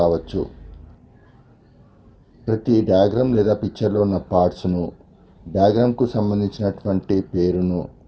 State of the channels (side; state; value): both; identical; correlation 1.00